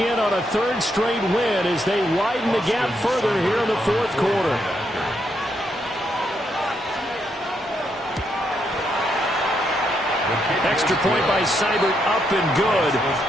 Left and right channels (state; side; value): normal; both; correlation 0.78